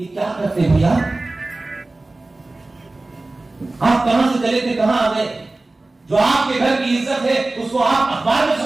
क्या करते हैं भैया? आप कहां से चले थे, कहां आ गए? जो आपके घर की इज्जत है उसको आप अखबार में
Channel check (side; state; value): left; quieter; 3.0 dB